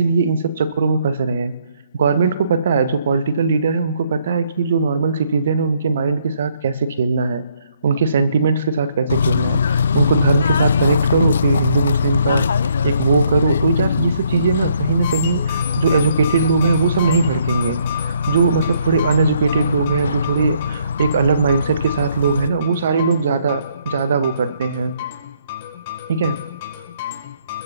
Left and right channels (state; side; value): inverted; both; correlation -0.69